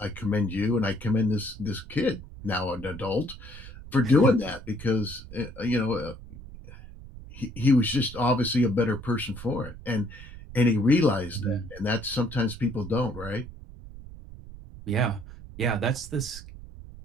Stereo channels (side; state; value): right; noise; rumble, 15 dB below the sound